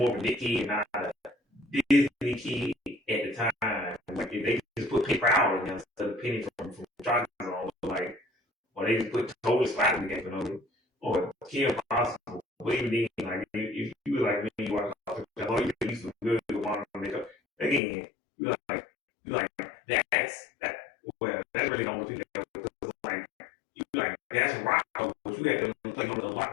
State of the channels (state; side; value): drops out; right; at 17.8 s